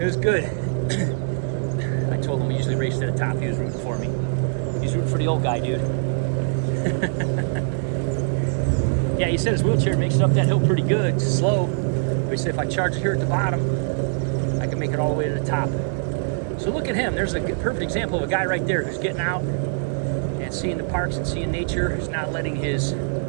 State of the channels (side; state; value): left; silent; digital silence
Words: was good. I told him we usually race to the top. He was rooting for me. He's rooting for the old guy, dude. Yeah, he said his wheelchair makes it up that hill pretty good. It's slow. But he said if I charge it here at the bottom, I can make it all the way to the top. So look at him. There's a perfect example of a guy right there who's getting out and seeing the parks and seeing nature. Who's not letting his,